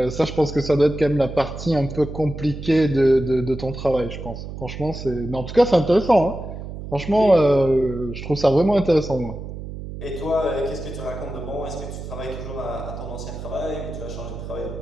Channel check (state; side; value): noise; right; hum, 9 dB below the sound